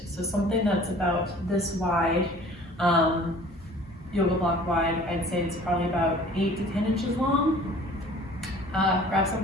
So something that's about this wide, yoga block wide, I'd say it's probably about 8 to 10 inches long. Grab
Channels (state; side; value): normal; both; correlation 0.48